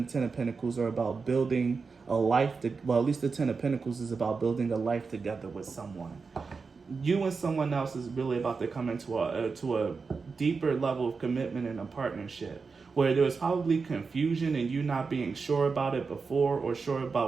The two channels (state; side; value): quieter; left; 4.8 dB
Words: the Ten of Pentacles are about building a life. At least the Ten of Pentacles is about building a life together with someone. You and someone else is really about to come into a deeper level of commitment and a partnership, where there was probably confusion and you not being sure about it before, or sure